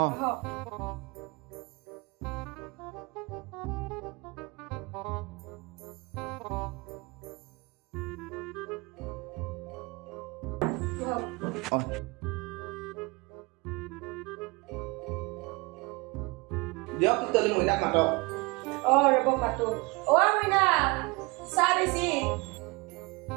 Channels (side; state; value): left; quieter; 26.7 dB